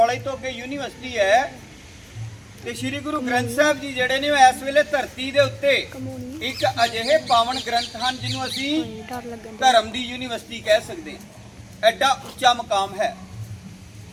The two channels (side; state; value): both; identical; correlation 1.00